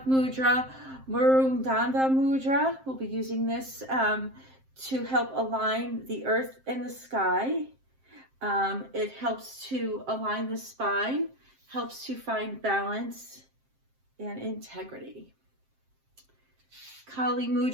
mudra, Murundanda Mudra. We'll be using this to help align the earth and the sky. It helps to align the spine, helps to find balance and integrity. Kali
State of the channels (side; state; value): left; late; 7.6 ms